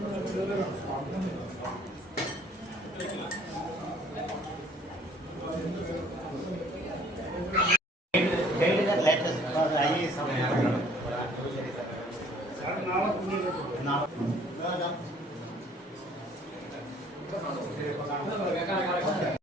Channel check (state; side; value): normal; both; correlation 0.58